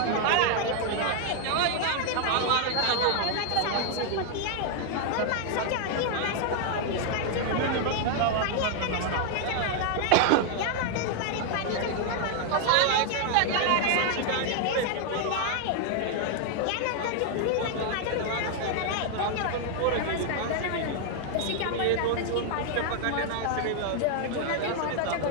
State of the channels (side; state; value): both; different; correlation 0.00